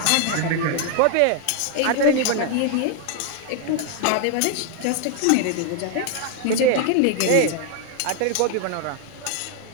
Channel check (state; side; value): different; both; correlation 0.01